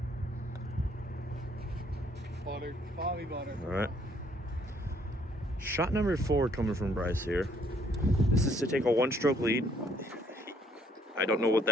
Bobby butter. All right. Shot number 4 coming from Bryce here. This is to take a 1-stroke lead. I don't know what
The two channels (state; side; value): normal; both; correlation 0.65